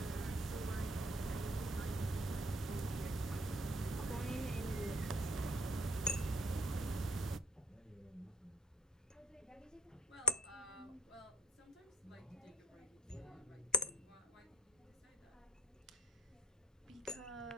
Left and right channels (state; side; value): normal; both; correlation 0.50